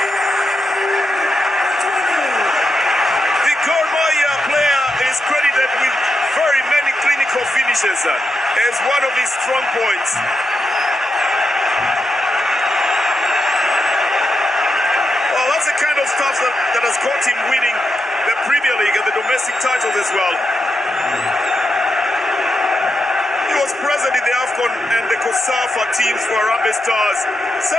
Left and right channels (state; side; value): normal; both; correlation 0.85